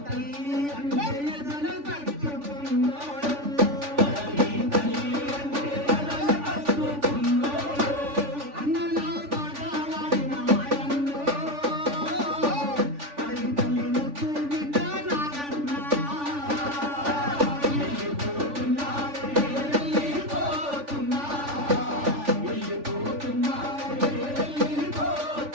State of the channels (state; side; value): late; left; 3.5 ms